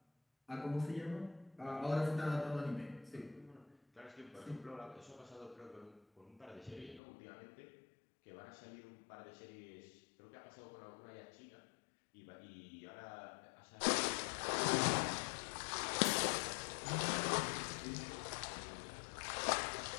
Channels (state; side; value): drops out; right; at 7.0 s